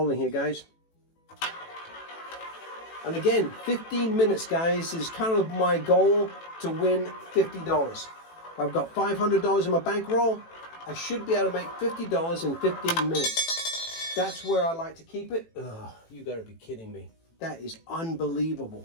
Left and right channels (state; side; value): late; right; 18 ms